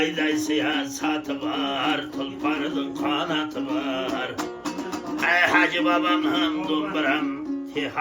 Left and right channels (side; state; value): both; identical; correlation 1.00